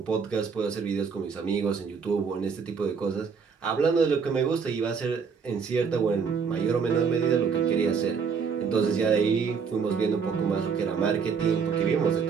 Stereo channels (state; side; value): quieter; left; 5.9 dB